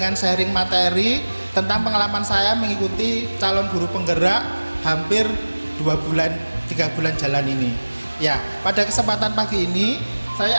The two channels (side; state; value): both; inverted; correlation -1.00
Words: sharing materi tentang pengalaman saya mengikuti calon guru penggerak hampir 3 bulan jalan ini. Ya, pada kesempatan pagi ini